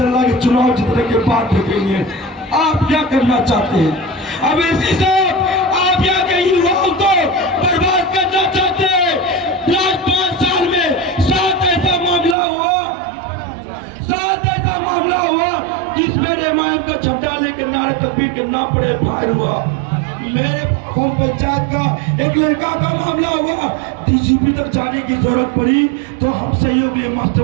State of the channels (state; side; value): drops out; left; at 12.4 s